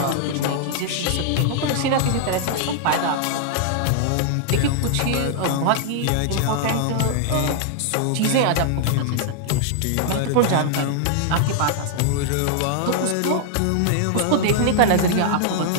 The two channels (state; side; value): different; both; correlation -0.01